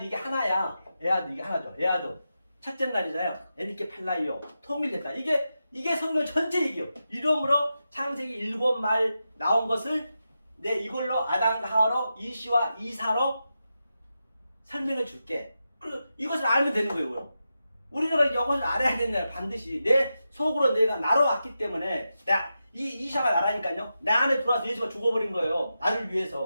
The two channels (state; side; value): inverted; both; correlation -0.89